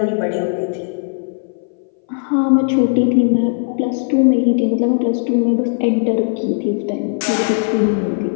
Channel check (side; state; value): right; silent; 61 dB below the other